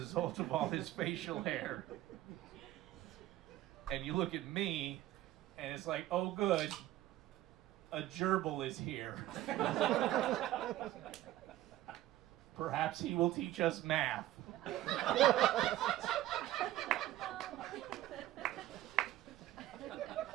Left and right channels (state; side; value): quieter; left; 14.7 dB